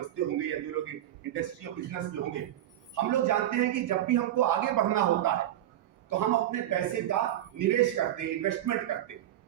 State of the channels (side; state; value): left; quieter; 12.6 dB